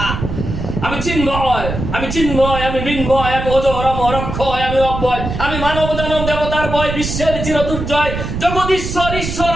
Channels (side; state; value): right; noise; rumble, 5 dB below the sound